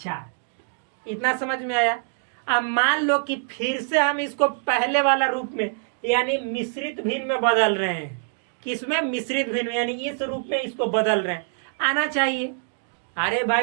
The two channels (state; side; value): silent; left; 62 dB below the other